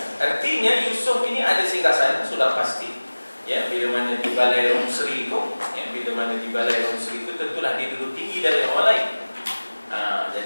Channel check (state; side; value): inverted; both; correlation -1.00